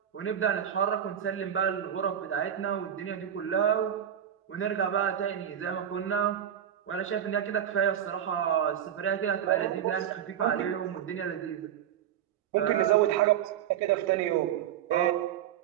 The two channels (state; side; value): quieter; left; 9.8 dB